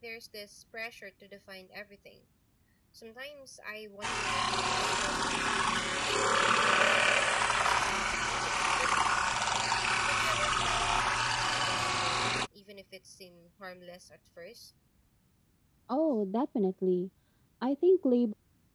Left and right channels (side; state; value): both; identical; correlation 1.00